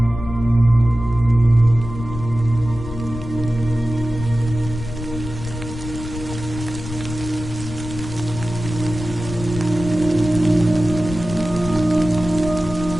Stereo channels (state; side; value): noise; left; rumble, 10 dB below the sound